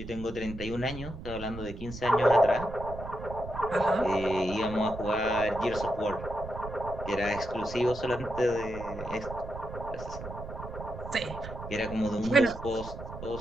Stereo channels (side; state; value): right; noise; rumble, 10 dB below the sound